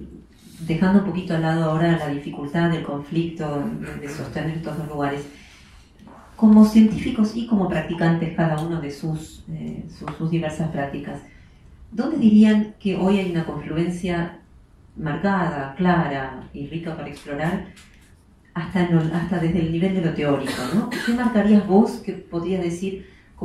dejando un poquito al lado ahora la dificultad del conflicto de sostener estos dos lugares. Como científicos y como practicantes cada uno de sus diversas prácticas, ¿dónde dirían que hoy hay una confluencia marcada, clara y rica para explorar, hasta desde el nivel de lo teórico, ¿no? ¿Qué marcarías vos que podrías decir,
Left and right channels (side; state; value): both; identical; correlation 1.00